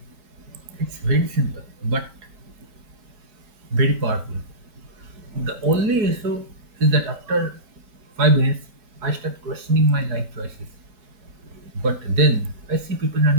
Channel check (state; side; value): late; left; 4.7 ms